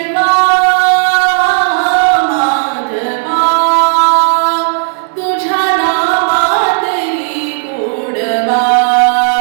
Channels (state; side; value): silent; left; digital silence